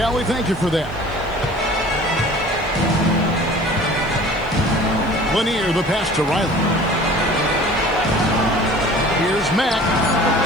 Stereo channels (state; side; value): noise; left; hiss, 29 dB below the sound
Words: thank you for that. Lanier, the pass to Riley. Here's Mack.